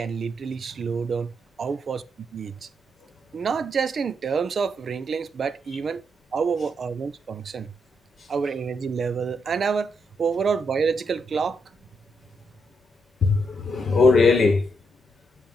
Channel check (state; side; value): normal; both; correlation 0.79